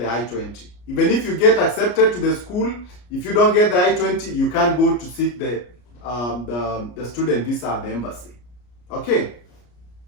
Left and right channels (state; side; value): late; right; 33 ms